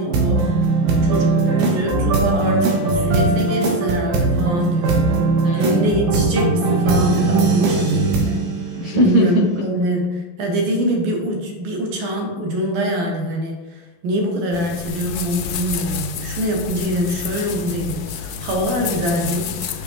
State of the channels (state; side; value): late; left; 11 ms